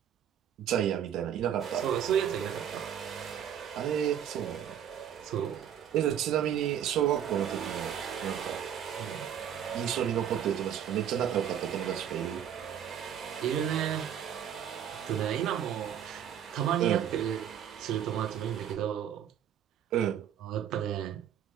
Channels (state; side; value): quieter; left; 9.4 dB